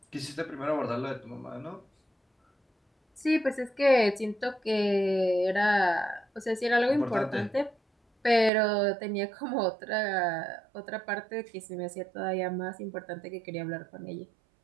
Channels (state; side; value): drops out; left; at 8.5 s